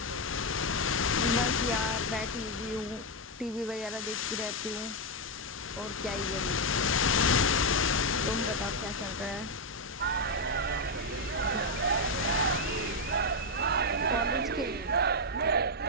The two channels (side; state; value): both; normal; correlation 0.02